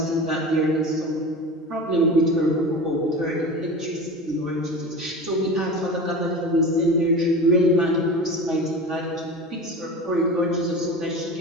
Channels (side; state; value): both; normal; correlation 0.31